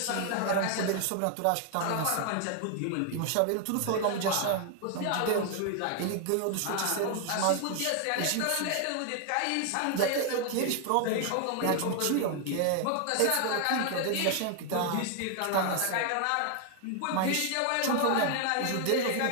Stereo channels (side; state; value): both; different; correlation 0.00